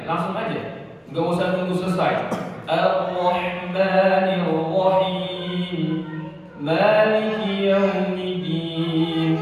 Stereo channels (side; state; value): both; identical; correlation 1.00